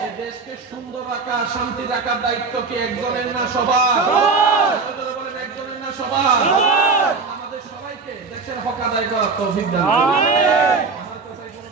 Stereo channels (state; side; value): quieter; left; 4.4 dB